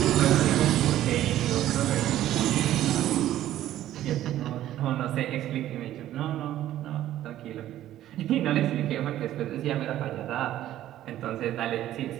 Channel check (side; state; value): left; quieter; 13.0 dB